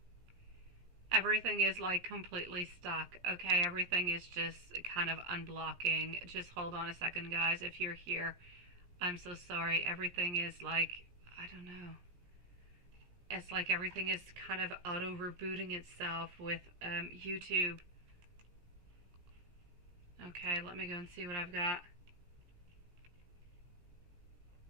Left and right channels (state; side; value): late; left; 17 ms